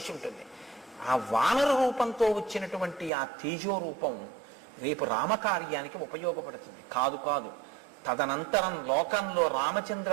ఉంటుంది. ఆ వానర రూపంతో వచ్చినటువంటి ఆ తేజో రూపం రేపు రామకార్యానికి ఉపయోగపడుతుంది. కాదు కాదు, తదనంతరం లోకంలో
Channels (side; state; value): left; drops out; at 3.1 s